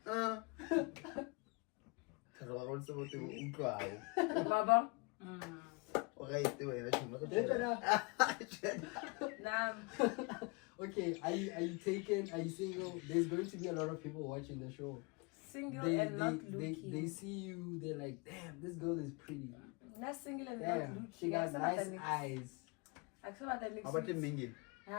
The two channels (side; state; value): right; quieter; 29.8 dB